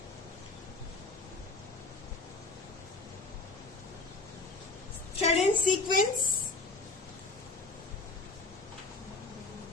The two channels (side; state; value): right; quieter; 3.5 dB